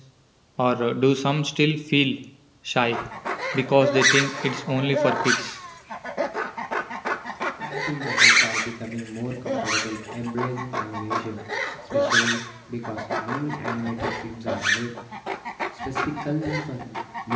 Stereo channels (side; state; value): both; identical; correlation 1.00